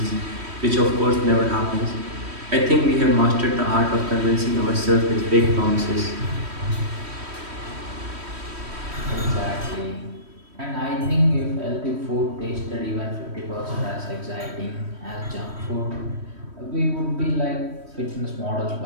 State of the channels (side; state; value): left; late; 3.1 ms